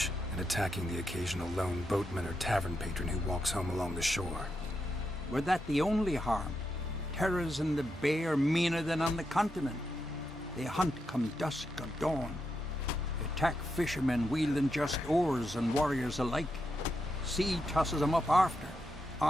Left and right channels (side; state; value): both; normal; correlation 0.84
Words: and attacking the occasional lone boatman or tavern patron who walks home along the shore. Were that the only harm? Terrors in the bay are meaner than on the continent. They hunt come dusk or dawn. Attack fishermen wielding just oars and warriors alike. Sea tosses them up after.